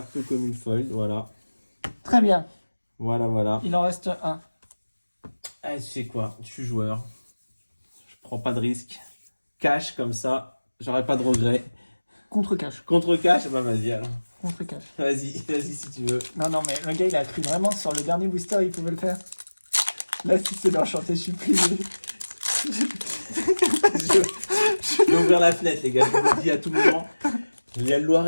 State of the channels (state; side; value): inverted; both; correlation -1.00